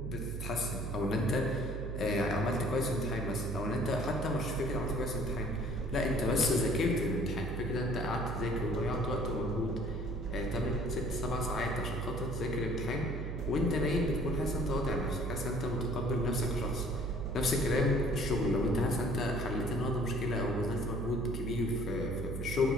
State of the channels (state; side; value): noise; right; hum, 4 dB below the sound